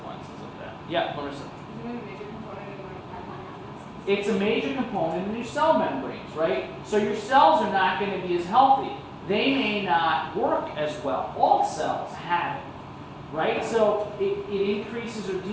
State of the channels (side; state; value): both; identical; correlation 1.00